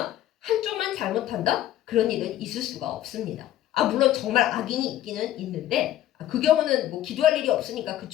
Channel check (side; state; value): right; quieter; 13.0 dB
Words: 한쪽만 잘못한다? 그런 일은 있을 수가 없습니다. 물론 정말 악인이 있기는 있는데 그 경우는 뭐 기도할 일이 없으니까